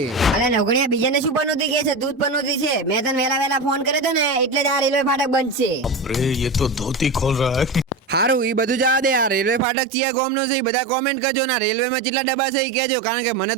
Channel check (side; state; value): left; drops out; at 9.7 s